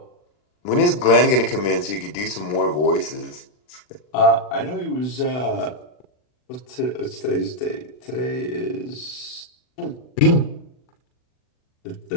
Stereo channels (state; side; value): late; right; 40 ms